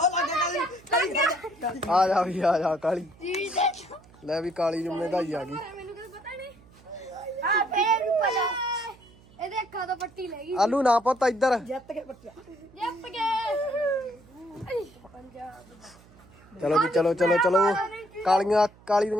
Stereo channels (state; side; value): noise; right; hum, 26 dB below the sound